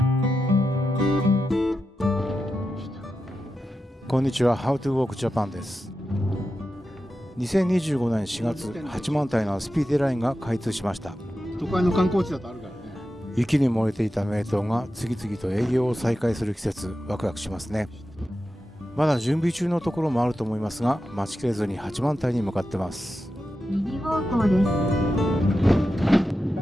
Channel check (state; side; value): normal; both; correlation 0.90